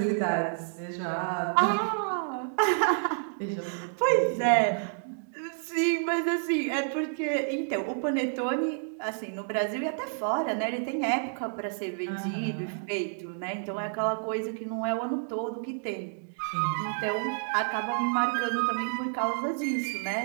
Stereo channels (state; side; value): silent; left; digital silence